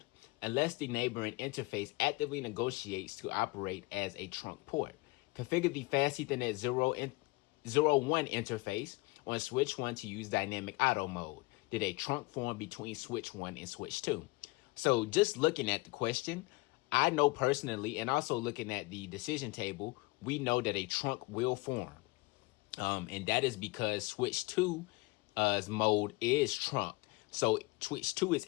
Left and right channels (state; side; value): quieter; right; 24.3 dB